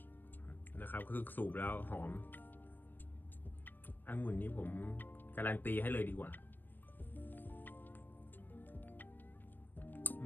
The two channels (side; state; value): right; late; 0.092 ms